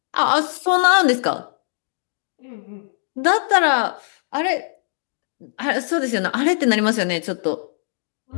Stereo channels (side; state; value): right; silent; digital silence